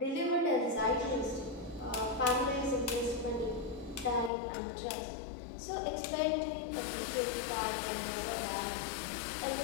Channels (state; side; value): drops out; right; at 4.3 s